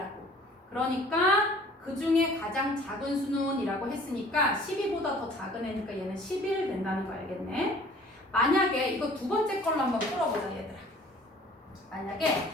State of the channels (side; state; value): both; normal; correlation 0.51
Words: 그러니까 그 중에 가장 작은 수는 이라고 했으니까 12보다 더 작은 애니까 얘는 11 된다는 거 알겠네. 만약에 이거 두 번째 걸로 한번 풀어보자 얘들아. 만약에